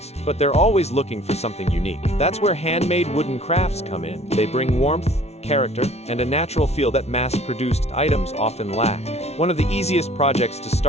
but they're always looking for something unique. That's where handmade wooden crafts come in. They bring warmth, character, and a natural feel that mass-produced items often lack. One of the easiest projects to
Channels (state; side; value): late; right; 0.31 ms